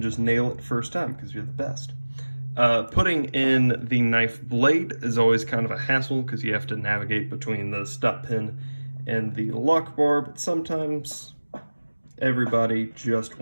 just nail it first time because you're the best. Putting in the knife blade is always kind of a hassle because you have to navigate between the stop pin and the lock bar, but sometimes everybody just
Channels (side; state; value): both; inverted; correlation -1.00